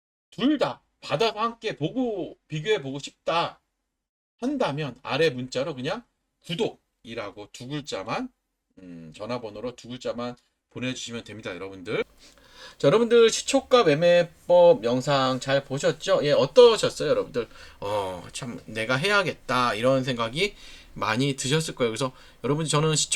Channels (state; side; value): identical; both; correlation 1.00